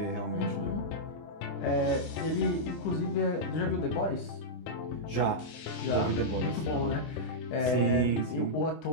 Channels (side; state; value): right; late; 24 ms